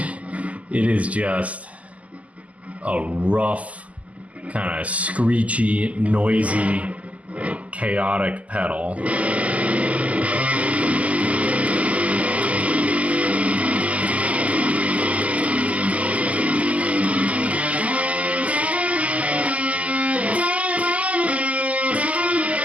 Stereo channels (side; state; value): left; late; 0.069 ms